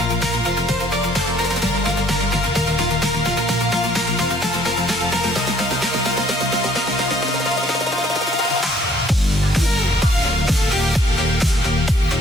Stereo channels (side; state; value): both; normal; correlation 0.62